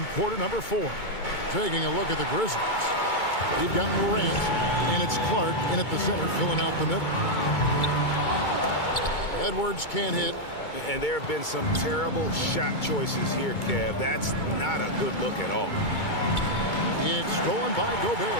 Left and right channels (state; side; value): late; right; 2.2 ms